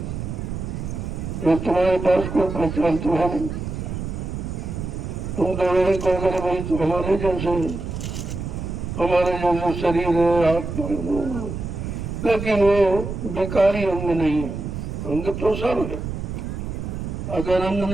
जो तुम्हारे पास कोई पहचान तो है नहीं। तुम तो वही कहोगे भाई तो हमारे जैसे शरीर है, हाथ पर, लेकिन वो बेकारी अंग नहीं है। अंग तो सब है, अगर अंग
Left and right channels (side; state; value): right; noise; rumble, 5 dB below the sound